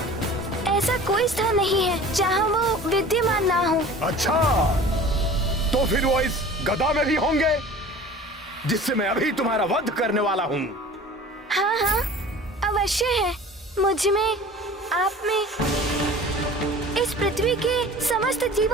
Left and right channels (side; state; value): both; normal; correlation 0.42